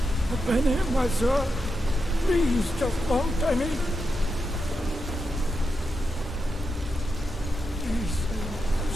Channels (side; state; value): both; normal; correlation 0.87